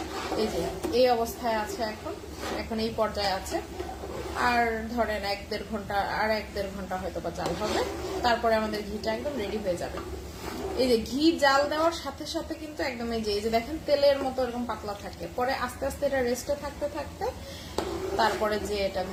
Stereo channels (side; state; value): both; identical; correlation 1.00